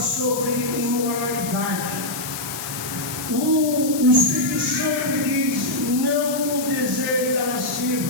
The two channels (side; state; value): left; noise; hiss, 8 dB below the sound